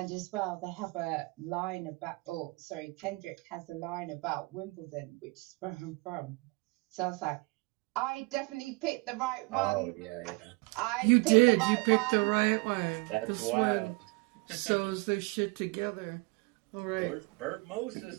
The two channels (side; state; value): left; quieter; 27.9 dB